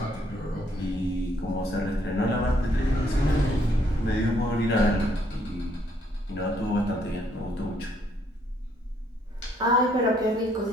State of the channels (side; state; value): both; normal; correlation 0.69